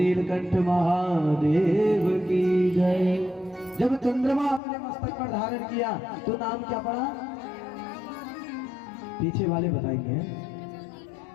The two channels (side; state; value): right; drops out; at 4.6 s